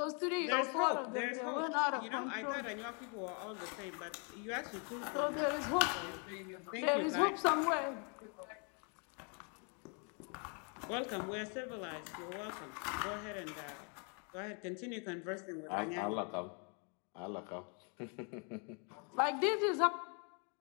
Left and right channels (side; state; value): right; quieter; 37.8 dB